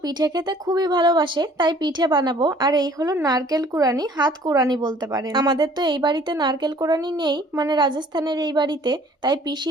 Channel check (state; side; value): normal; both; correlation 0.54